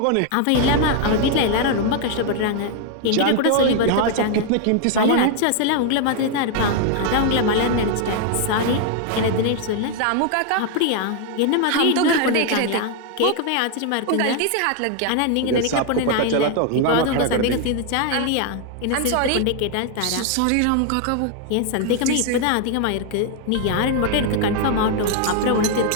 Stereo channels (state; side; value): different; both; correlation 0.00